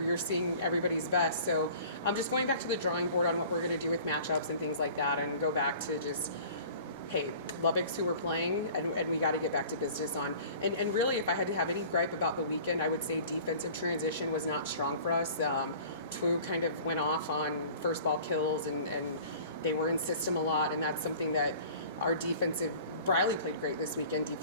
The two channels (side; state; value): both; inverted; correlation -0.45